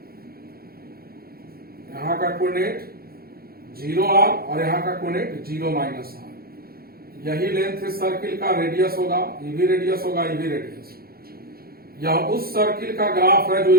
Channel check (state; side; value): late; left; 0.44 ms